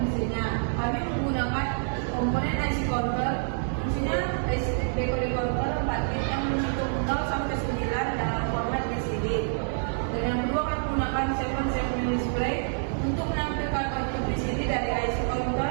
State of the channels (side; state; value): left; silent; digital silence